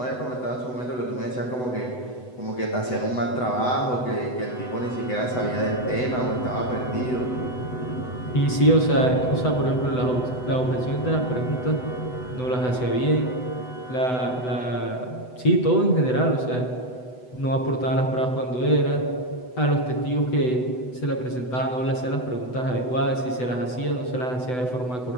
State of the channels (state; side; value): late; right; 8.0 ms